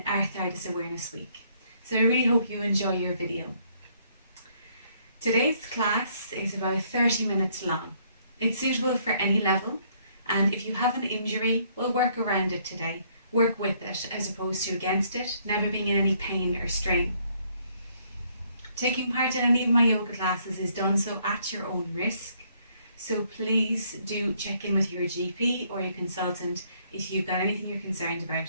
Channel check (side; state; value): both; inverted; correlation -0.67